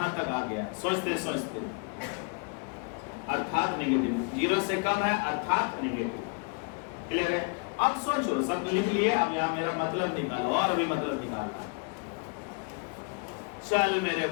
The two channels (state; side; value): quieter; right; 35.9 dB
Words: तक आ गया सोचते सोचते, अर्थात नेगेटिव। 0 से कम है अर्थात नेगेटिव। क्लियर है? अब सोचो, सब लिख लिए। अब यहाँ मेरा मतलब निकालो, और भी मतलब निकालो। चल मेरे